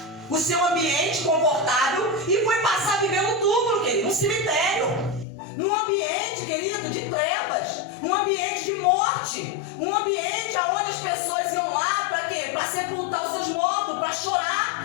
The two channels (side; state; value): right; drops out; at 5.2 s